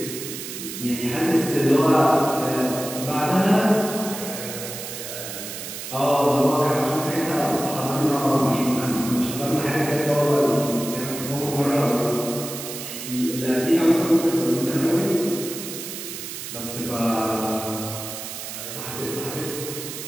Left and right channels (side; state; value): right; noise; hiss, 8 dB below the sound